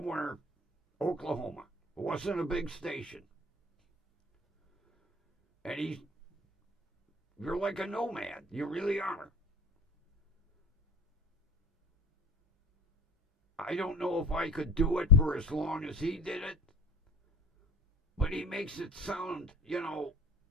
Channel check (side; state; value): both; normal; correlation 0.42